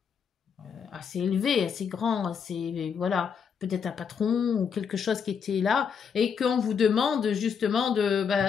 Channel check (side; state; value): right; quieter; 6.7 dB